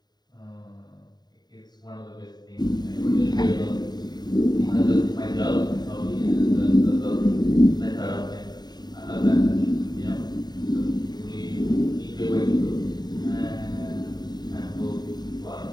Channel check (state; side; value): late; right; 0.20 ms